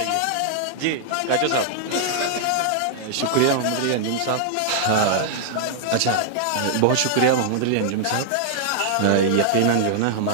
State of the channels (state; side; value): different; both; correlation -0.01